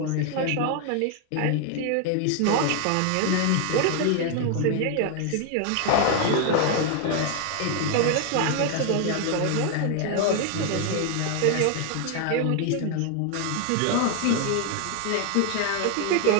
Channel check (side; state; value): both; different; correlation 0.00